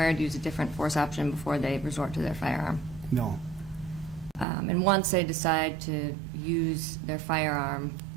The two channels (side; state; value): left; drops out; at 4.5 s